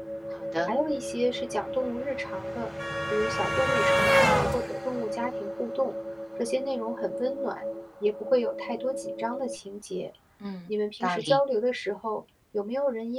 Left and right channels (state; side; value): identical; both; correlation 1.00